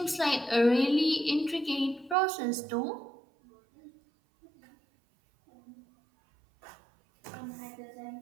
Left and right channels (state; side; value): drops out; left; at 2.1 s